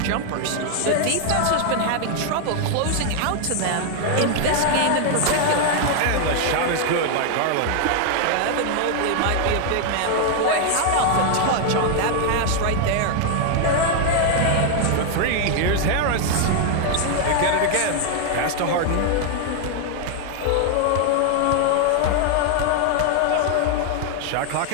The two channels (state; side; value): different; both; correlation 0.00